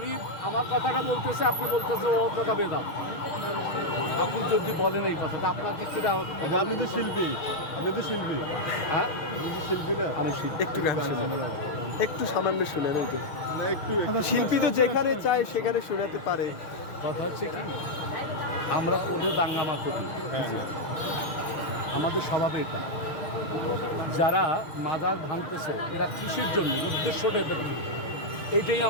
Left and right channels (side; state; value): right; late; 6.3 ms